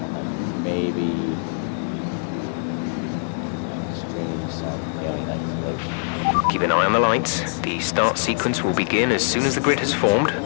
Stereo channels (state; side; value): silent; right; digital silence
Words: then maybe stream some alien isolation. Keep an eye on the lights. The start sequence will begin as soon as the grid has formed.